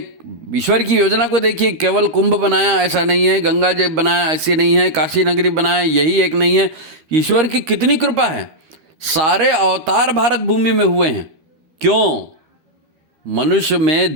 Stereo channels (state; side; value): late; left; 12 ms